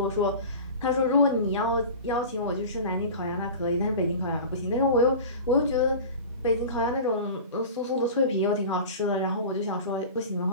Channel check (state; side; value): inverted; both; correlation -0.35